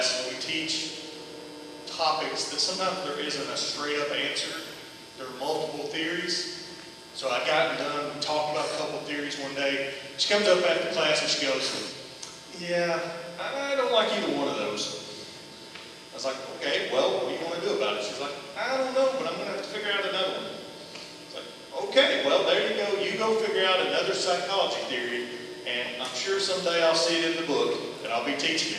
we teach topics that sometimes there isn't a straight up answer. There are multiple theories. So I got done, talked about a couple of theories one day. She comes up after class and she goes, yeah, I don't like either one of those. I was like, okay, well, what do you want to do about it? She's like, I don't know, but I'm going to have to figure out another one. Okay, well, there you go. You go figure out another psychology theory, and I'm sure someday I'll see it in the book, and I'll be teaching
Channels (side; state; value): both; identical; correlation 1.00